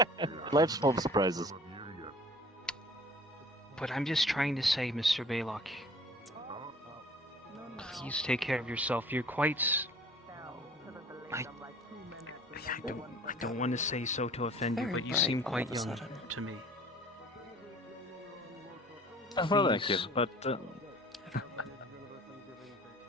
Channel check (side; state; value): both; normal; correlation 0.48